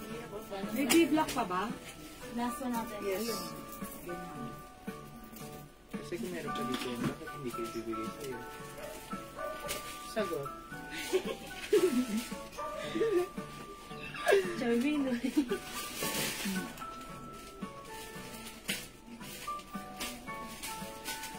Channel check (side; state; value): both; identical; correlation 1.00